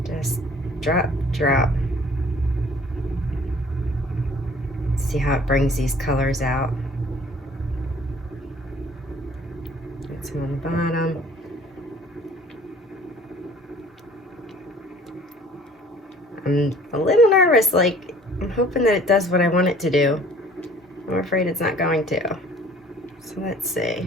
just drop. See how it brings these colors out. Get some on the bottom. I'm a little nervous, like I'm hoping that it does what I want it to do. I'm afraid it's not going to. So let's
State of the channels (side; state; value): both; normal; correlation 0.53